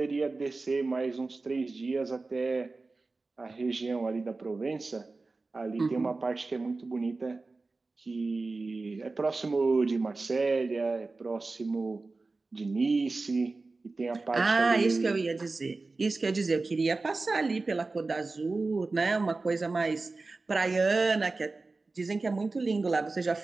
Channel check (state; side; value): quieter; left; 3.6 dB